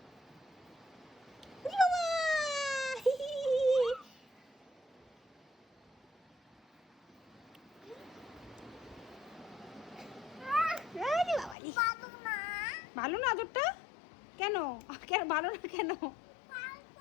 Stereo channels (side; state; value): right; drops out; at 11.6 s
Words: ভালো না আদরটা? কেন কেন ভালো না? কেন